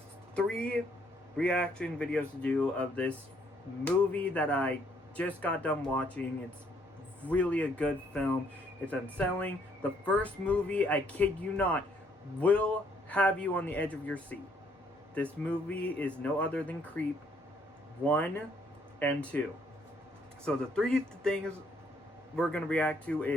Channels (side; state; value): both; normal; correlation 0.67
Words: 3 reaction videos to do of this movie that I just got done watching. It's really a good film. It's unsettling. The first movie, I kid you not, will have you on the edge of your seat. This movie is no other than Creep 1 and 2. So the 3 things we're going to react to